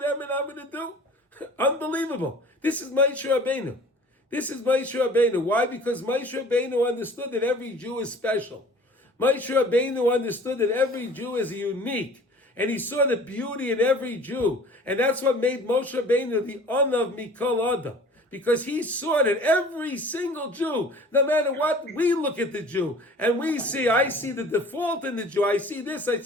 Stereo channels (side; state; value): both; normal; correlation 0.47